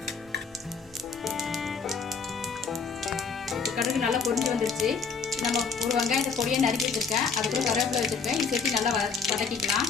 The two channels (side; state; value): right; quieter; 5.2 dB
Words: கடுகு நல்லா பொரிஞ்சு வந்துருச்சு. நம்ம ஒரு வெங்காயத்தை பொடியை நறுக்கி வச்சிருக்கேன், அது கூட கருவேப்பிலை வச்சிருக்கேன். இது சேர்த்து நல்லா வதக்கிக்கலாம்.